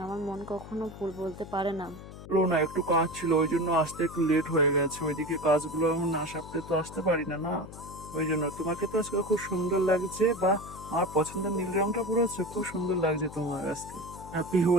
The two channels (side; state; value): left; noise; hum, 14 dB below the sound